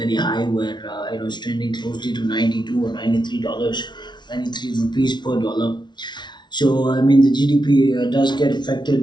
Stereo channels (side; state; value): right; late; 0.21 ms